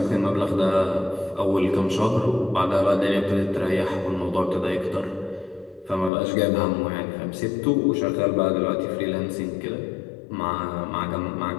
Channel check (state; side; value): drops out; right; at 6.1 s